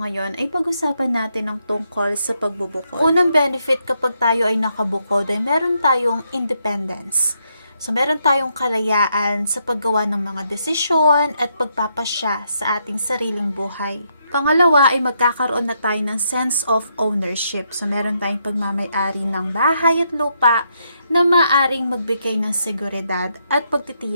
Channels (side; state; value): both; inverted; correlation -0.77